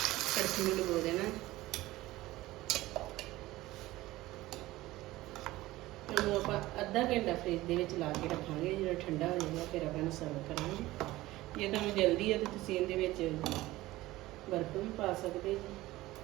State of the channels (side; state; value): left; quieter; 17.7 dB